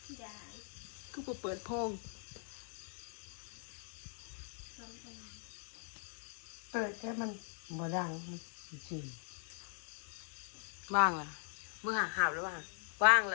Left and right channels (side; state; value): right; silent; 51 dB below the other